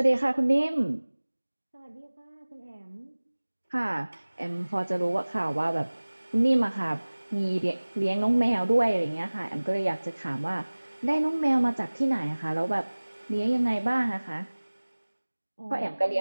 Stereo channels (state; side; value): inverted; both; correlation -1.00